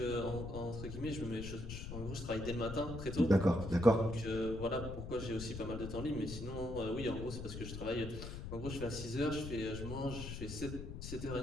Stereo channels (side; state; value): left; noise; rumble, 7 dB below the sound